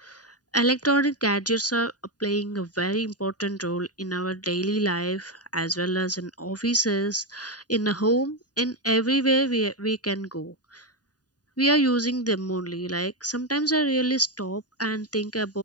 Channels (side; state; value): right; late; 0.68 ms